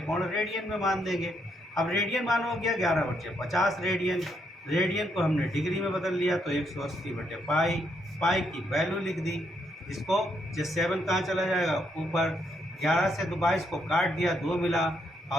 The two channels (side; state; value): both; normal; correlation 0.76